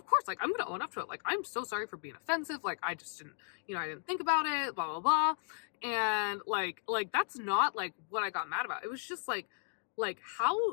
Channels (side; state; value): right; silent; 54 dB below the other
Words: course, like I'm gonna own up to it. Like I'm so sorry for being offensive. Like I just didn't, I didn't think about it, blah blah blah. And like that's not like what I got mad about. It was just like